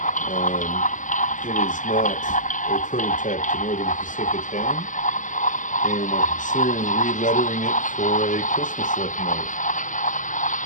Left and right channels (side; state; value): right; late; 0.37 ms